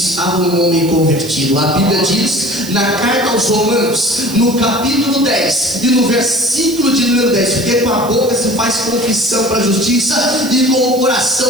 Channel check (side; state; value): right; noise; hiss, 14 dB below the sound